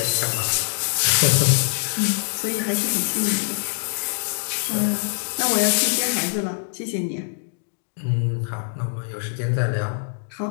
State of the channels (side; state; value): right; silent; digital silence